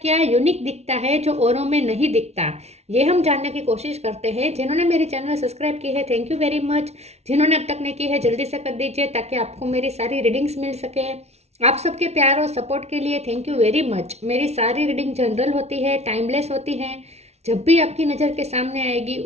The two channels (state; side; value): late; left; 0.31 ms